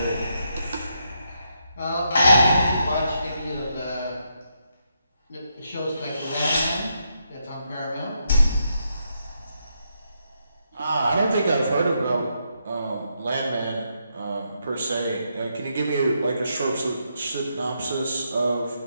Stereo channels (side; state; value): both; inverted; correlation -0.80